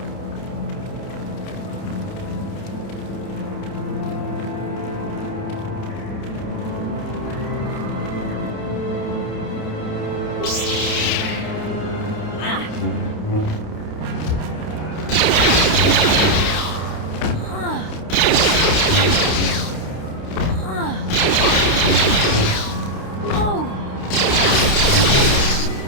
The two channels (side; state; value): right; late; 29 ms